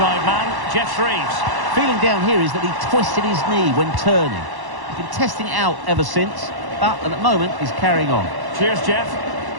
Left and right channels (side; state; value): left; late; 1.1 ms